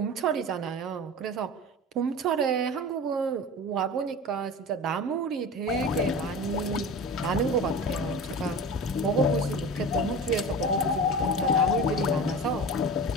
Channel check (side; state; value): both; normal; correlation 0.32